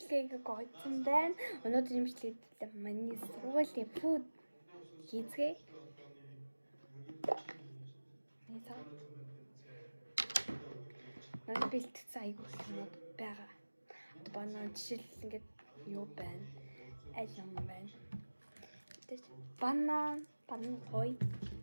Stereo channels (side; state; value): both; inverted; correlation -1.00